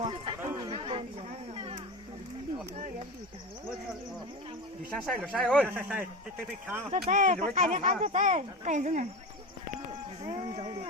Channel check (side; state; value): both; normal; correlation 0.25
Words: 啊？你先晒就晒哦，晒，得看。这在，还没看这在，干什么？